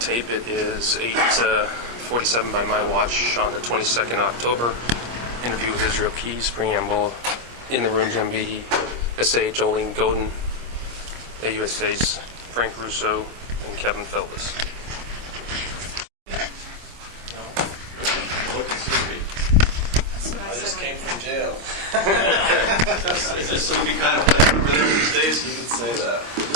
It is 8:47 by my watch on the 22nd October. Interview with Israel Keys, preamble. In the room, MB, SA Jolene Godin, USA's Frank Russo, and Kevin Feldman. Looking sleepy. I just came from jail. Is this sleepy kind of place over there these days? You could say that.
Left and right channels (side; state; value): left; late; 25 ms